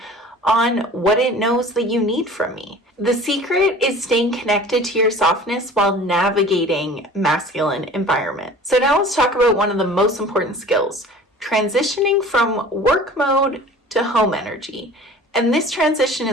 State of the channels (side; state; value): both; normal; correlation 0.44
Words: on what it knows that you need from me. The secret is staying connected to your softness while navigating masculine environment. So now let's talk about one of the most important skills, transitioning from work mode to home energy. And this transition